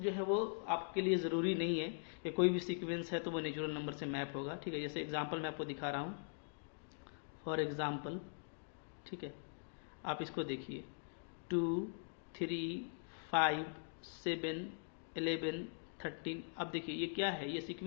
है वो आपके लिए ज़रूरी नहीं है कि कोई भी सीक्वेंस है तो वो नेचुरल नंबर से मैप होगा। ठीक है, जैसे एग्जाम्पल मैं आपको दिखा रहा हूँ, फॉर एग्जाम्पल, ठीक है, आप इसको देखिए, 2 3 5 7 11 13। अब देखिए ये क्या है, ये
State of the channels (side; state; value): right; silent; digital silence